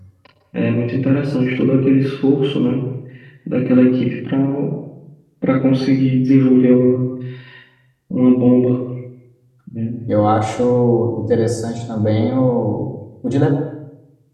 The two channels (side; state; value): both; identical; correlation 1.00